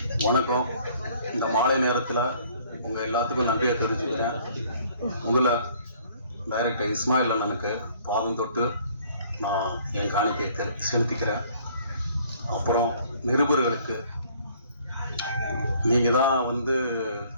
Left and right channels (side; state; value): both; inverted; correlation -0.58